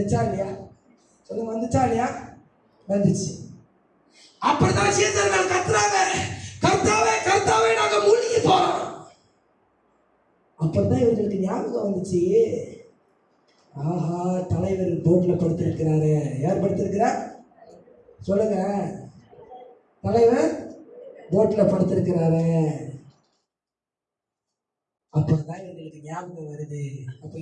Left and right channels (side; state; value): both; identical; correlation 1.00